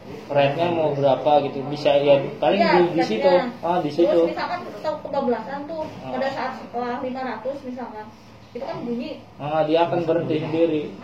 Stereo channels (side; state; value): both; identical; correlation 1.00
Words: rate-nya mau berapa gitu, bisa ya paling di situ. Di situ. Terus misalkan tahu kebablasan tuh pada saat setelah 500 misalkan, itu kan bunyi. Dia akan berhenti sendiri.